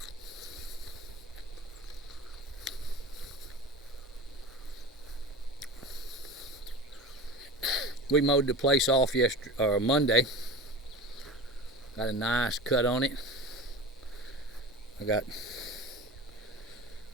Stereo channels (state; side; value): normal; both; correlation 0.32